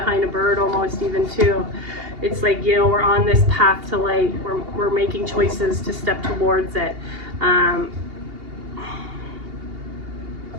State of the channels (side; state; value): left; late; 2.8 ms